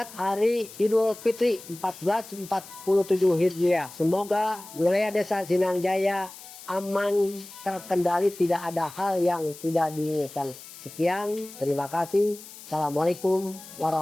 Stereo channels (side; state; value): left; noise; hiss, 17 dB below the sound